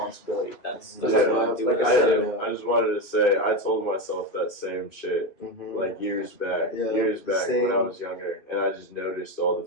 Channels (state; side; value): late; right; 2.6 ms